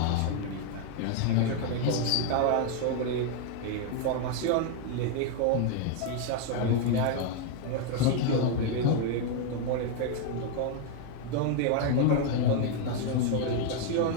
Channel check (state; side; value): different; both; correlation 0.00